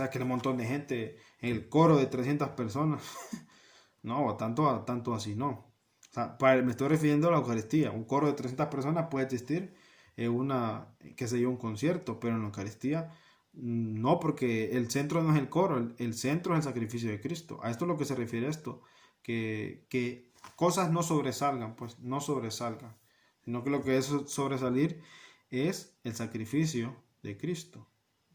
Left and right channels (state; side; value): identical; both; correlation 1.00